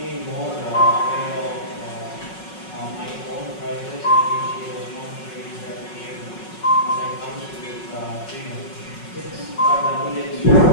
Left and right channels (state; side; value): late; right; 5.4 ms